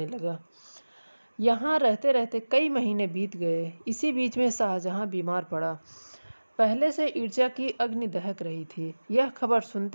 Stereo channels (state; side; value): inverted; both; correlation -1.00